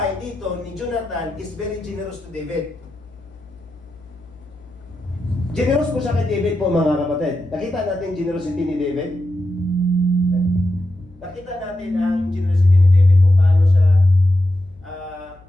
dito ni Jonathan is very generous to David. Generous po siya kay David po, mga kapatid. Nakita natin generosity ni David. Nakita natin ang generosity ni David kung paano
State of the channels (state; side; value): noise; left; hum, 26 dB below the sound